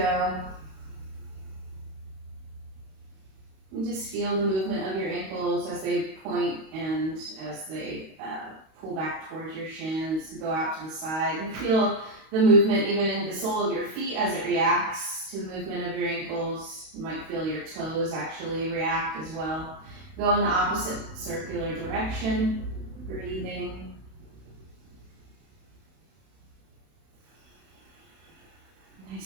And just feel the movement of your ankles as they point and as they pull back towards your shins, go out to the side. And feel the movement even in the sole of your feet as it reacts to the movement of your ankles. You might feel your toes actually react as well. Go in the opposite circular direction, breathing.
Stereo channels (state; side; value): late; left; 31 ms